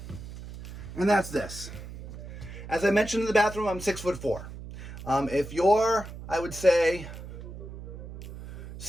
and that's this. As I mentioned in the bathroom, I'm 6'4". If you're, I would say,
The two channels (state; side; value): noise; right; hum, 12 dB below the sound